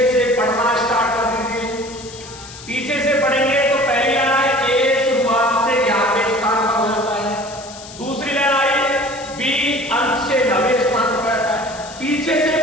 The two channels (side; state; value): left; noise; hiss, 16 dB below the sound